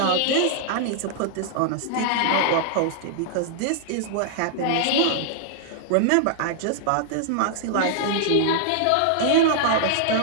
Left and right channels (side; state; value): both; different; correlation -0.01